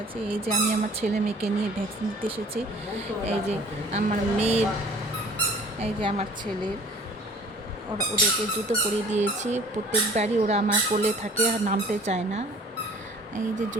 আছি। এই যে আমি আমার ছেলে মেয়েকে নিয়ে ভ্যাকসিন দিতে এসেছি। এই যে আমার মেয়ের, এই যে আমার ছেলের, ওদেরকে জুতো পরিয়ে দিয়েছি। প্রত্যেকবারই ওরা আমার কোলে থাকে আর নামতে চায় না। এই যে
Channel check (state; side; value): normal; both; correlation 0.50